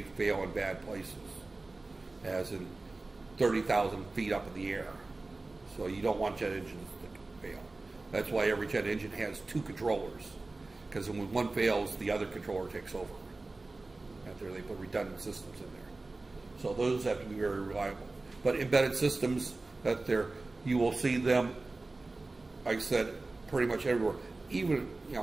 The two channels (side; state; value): left; quieter; 3.3 dB